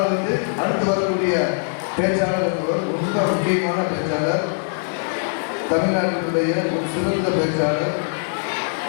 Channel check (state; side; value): silent; right; digital silence